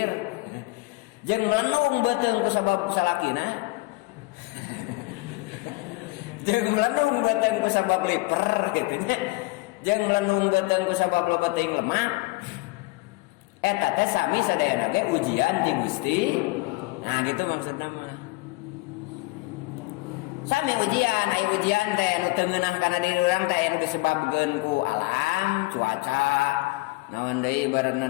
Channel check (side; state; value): right; quieter; 22.1 dB